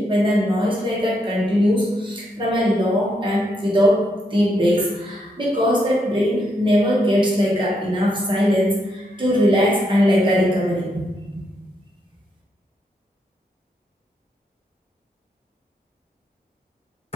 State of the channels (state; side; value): normal; both; correlation 0.78